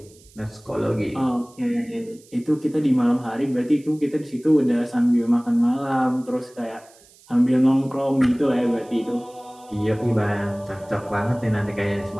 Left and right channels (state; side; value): noise; right; hiss, 27 dB below the sound